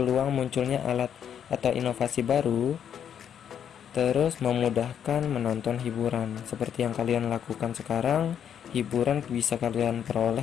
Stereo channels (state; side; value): quieter; right; 8.7 dB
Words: munculnya alat atau inovasi baru Terus memudahkan menonton hiburan. Seperti yang kalian lakukan sekarang, hiburan bisa kalian